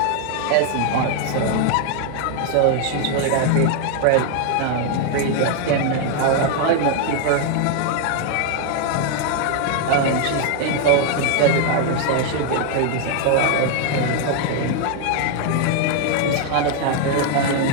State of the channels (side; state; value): both; different; correlation 0.01